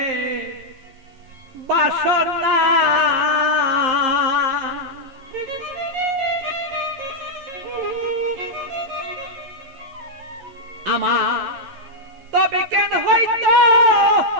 বাসনা আমার তবে কেন হইতো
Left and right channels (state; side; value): late; left; 11 ms